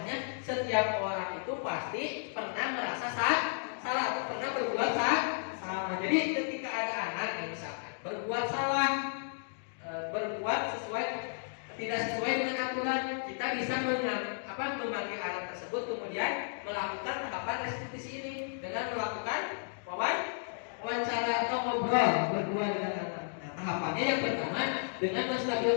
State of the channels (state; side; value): silent; right; digital silence